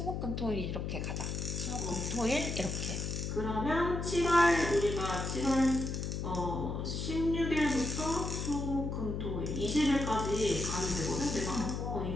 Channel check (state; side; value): noise; left; hum, 3 dB below the sound